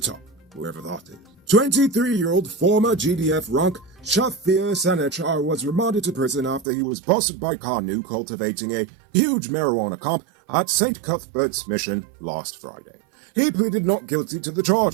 wherever that is. 23-year-old former GDF rank Shafir Sanechar was remanded to prison after he was busted by Kanu cultivating a huge marijuana camp at St. Cuthbert's Mission last Friday. He pleaded not guilty to the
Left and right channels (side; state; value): left; drops out; at 6.7 s